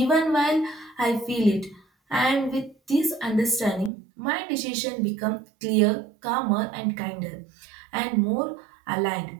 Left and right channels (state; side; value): drops out; left; at 3.9 s